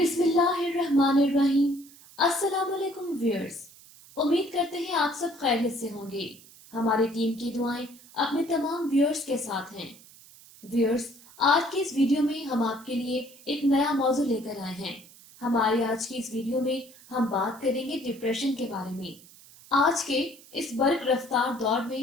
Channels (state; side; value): noise; right; hiss, 22 dB below the sound